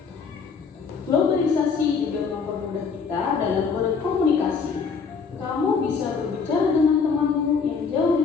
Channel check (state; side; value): quieter; right; 5.4 dB